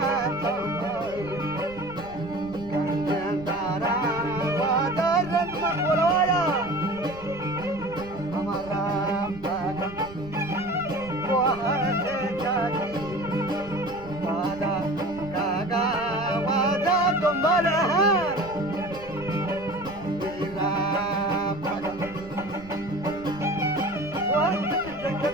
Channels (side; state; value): right; noise; rumble, 17 dB below the sound